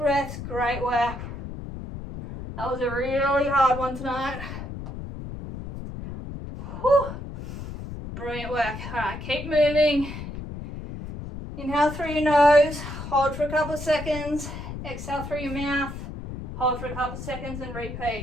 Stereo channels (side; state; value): left; noise; rumble, 9 dB below the sound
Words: great work. That was a really hard one tonight. Whew. Brilliant work. All right, keep moving. Inhale through your nose, hold for a couple of seconds, exhale through your mouth, hold for a couple of seconds and